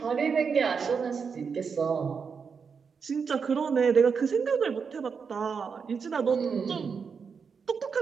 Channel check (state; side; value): quieter; left; 5.9 dB